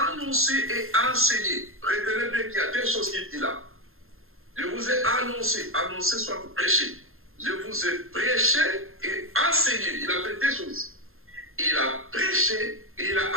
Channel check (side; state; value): left; late; 0.61 ms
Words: et enseigné. Retenez bien qu'il y a deux choses qu'il dit là. Je vous ai annoncé soit vous prêcher. Je vous ai prêché et enseigné. Il a fait deux choses. Il a prêché et il